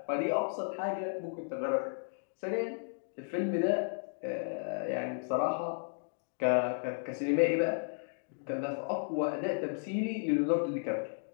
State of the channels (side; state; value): right; silent; digital silence